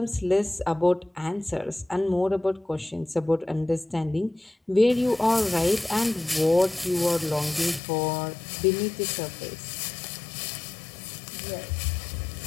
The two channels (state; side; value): drops out; right; at 7.8 s